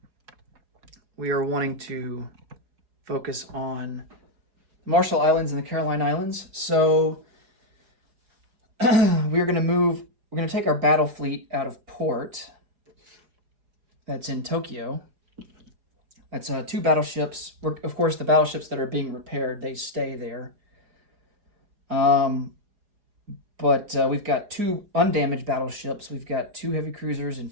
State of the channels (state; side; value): late; left; 4.8 ms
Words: we are wanting to focus on Marshall Islands and the Caroline Islands. So we're going to take our battle fleet out of port that's in Tokyo. That's 2 battleships. Of course, the battleships that are being repaired, they stay there. But we've got 2 undamaged battleships. We've got 2 heavy cruisers and